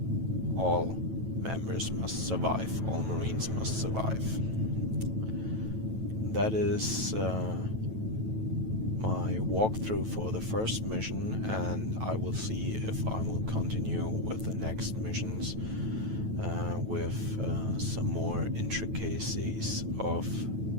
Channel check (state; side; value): late; left; 9.1 ms